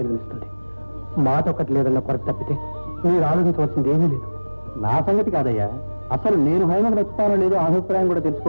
మాట ఒక్కటి లేదన్న కొరత తప్పితే మీరు ఆలోచించవలసింది ఏమీ లేదు. నా సంగతి కాదయ్యా, అసలు నేను హైమను నచ్చుతానో లేదో అభిప్రాయం కూడా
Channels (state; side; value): inverted; both; correlation -1.00